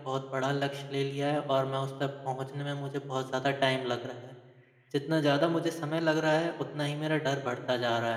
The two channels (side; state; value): both; identical; correlation 1.00